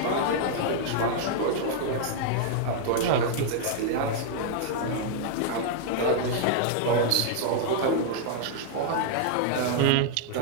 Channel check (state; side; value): different; both; correlation -0.01